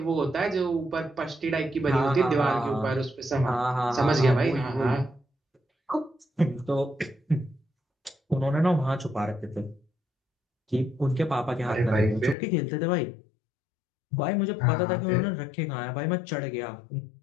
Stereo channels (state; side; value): drops out; right; at 12.4 s